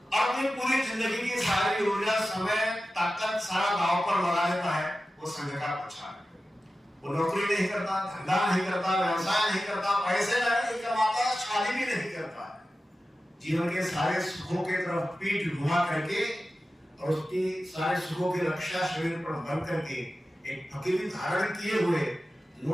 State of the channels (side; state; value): both; normal; correlation 0.94